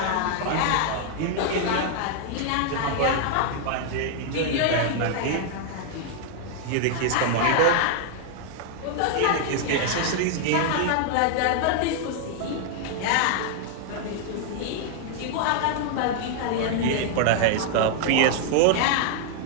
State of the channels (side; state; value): both; different; correlation 0.00